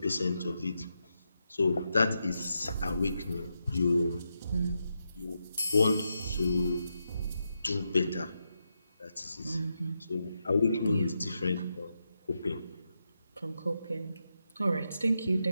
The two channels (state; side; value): inverted; both; correlation -0.85